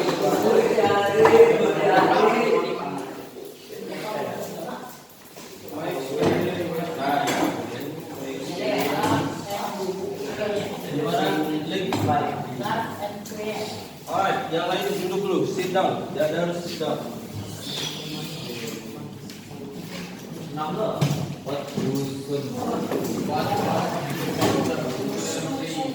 Alright, yang lain duduk dulu, sit down. Dia harus sit down. Number. What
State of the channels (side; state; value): both; identical; correlation 1.00